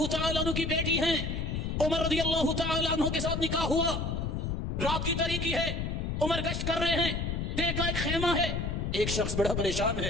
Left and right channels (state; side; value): noise; left; rumble, 2 dB below the sound